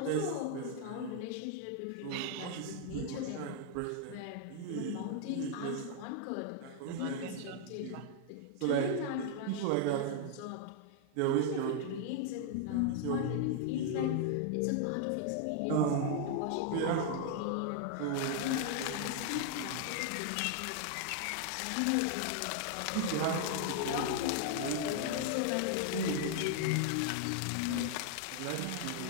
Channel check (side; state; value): both; different; correlation 0.00